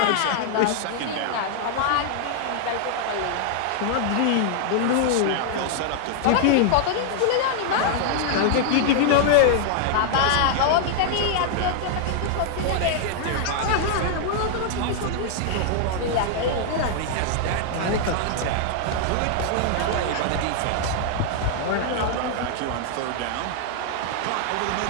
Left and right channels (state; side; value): different; both; correlation -0.01